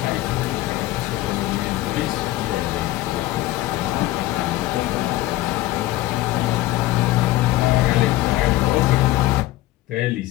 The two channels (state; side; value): quieter; right; 16.9 dB